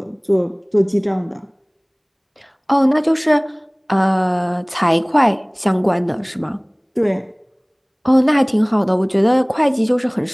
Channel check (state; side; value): identical; both; correlation 1.00